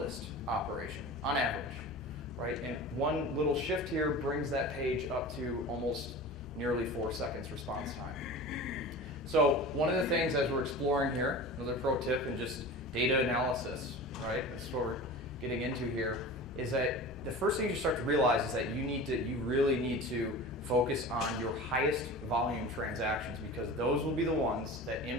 operation, on average, right? And one little shift here brings that page up to almost nearly 4 seconds response time. So one of the things as we're exploring here, another pro tip and just data analysis, right? That's what we're getting into here, is that the first thing you start to realize is that you really need to focus on your highest volume transactions, because those will be the ones that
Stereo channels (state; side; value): normal; both; correlation 0.35